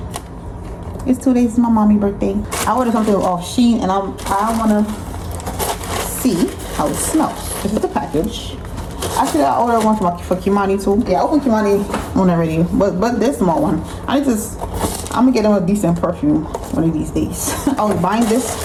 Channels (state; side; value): identical; both; correlation 1.00